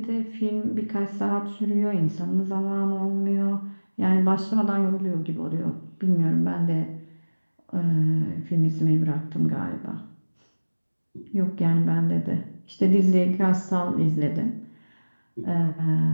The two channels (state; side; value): inverted; both; correlation -1.00